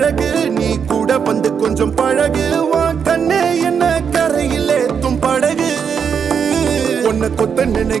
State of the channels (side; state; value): left; quieter; 6.9 dB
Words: நீ கூட வந்து கொஞ்சம் பழகு உன் கண்ணே என்ன கரையில் ஏத்தும் படகு உன்னை கொத்த